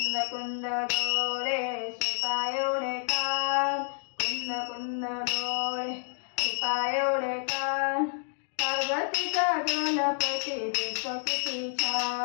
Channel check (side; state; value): right; silent; digital silence